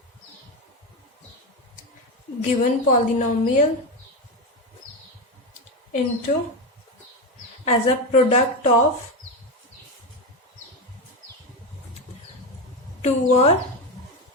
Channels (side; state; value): both; normal; correlation 0.14